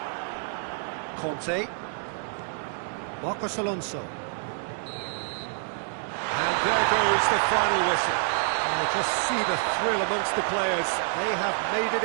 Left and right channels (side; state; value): left; silent; 60 dB below the other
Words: Conte. Marcos Alonso. And there goes the final whistle. Oh, just see the thrill amongst the players. They have made